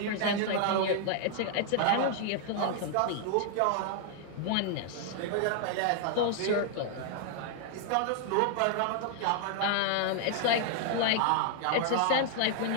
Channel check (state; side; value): different; both; correlation 0.00